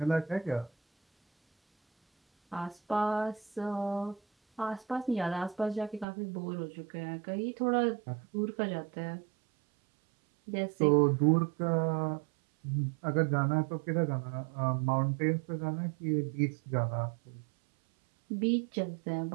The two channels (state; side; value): drops out; left; at 6.1 s